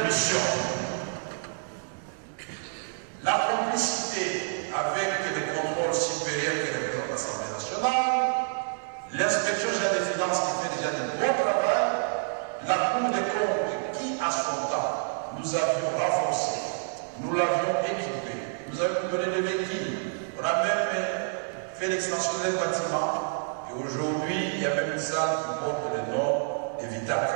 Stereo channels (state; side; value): silent; left; digital silence